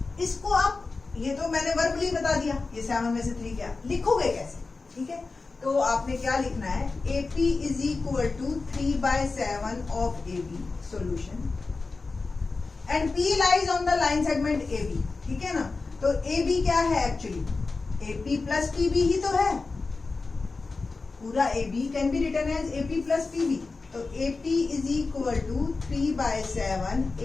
इसको आप, ये तो मैंने वर्बली बता दिया, ये 7 में से 3 क्या लिखोगे कैसे, ठीक है। तो आपने क्या लिखना है, AP is equal to 3/7 of AB solution and P lies on the line segment AB, ठीक है ना। तो AB क्या है एक्चुअली, AP प्लस PB ही तो है, पूरा AB can be written as AP plus PB। तो AP is equal to 3/7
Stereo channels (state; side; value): quieter; right; 3.9 dB